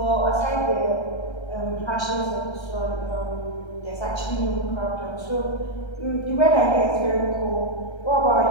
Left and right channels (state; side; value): late; right; 1.3 ms